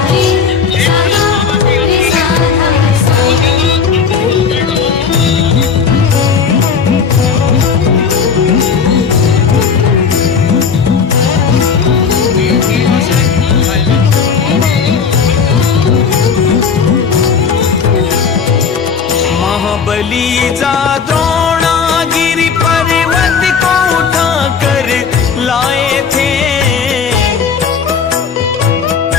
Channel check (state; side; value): quieter; right; 6.1 dB